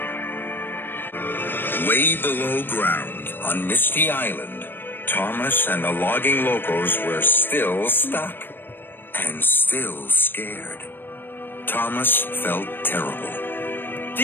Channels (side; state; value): right; late; 0.096 ms